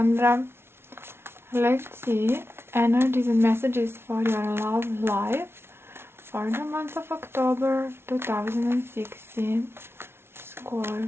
Let's see energies and messages for your love life for the month of October 2016.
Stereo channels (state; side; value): late; left; 0.12 ms